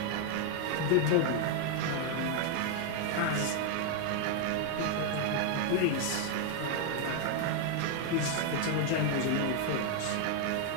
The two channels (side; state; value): both; different; correlation 0.00